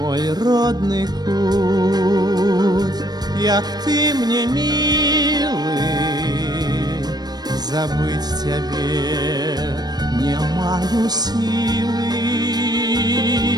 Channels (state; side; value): late; left; 0.19 ms